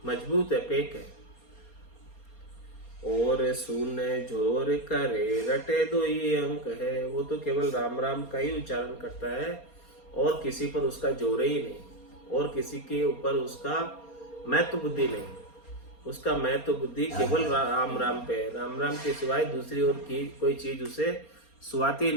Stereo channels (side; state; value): right; late; 4.3 ms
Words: मजबूत है, पेक है, और सुन झोर करे रटे दो ये अंक है। वो तो केवल राम राम का ही उच्चारण करता है और किसी पर उसका जोर ही नहीं, और किसी के ऊपर उसका महत्व बुद्धि नहीं। उसका महत्व बुद्धि केवल राम राम पे है। राम राम के सिवाय दूसरी और की कोई चीज उसे सुहाती